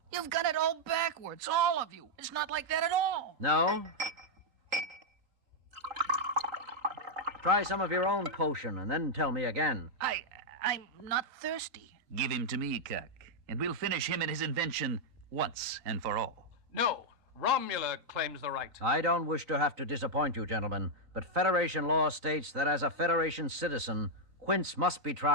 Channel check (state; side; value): late; left; 3.8 ms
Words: You've got it all backwards, all of you. It's not like that at all. No? Try some of your own potion and then tell me again. I'm not thirsty. Give him to me, Kirk, and we'll finish him and his invention once and for all. No, Romula claims the right. I don't wish to have to disappoint you, gentlemen, but Federation law states that as a Federation citizen, Quince must be